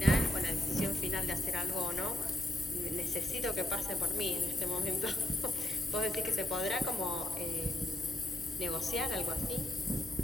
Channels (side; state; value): both; normal; correlation 0.80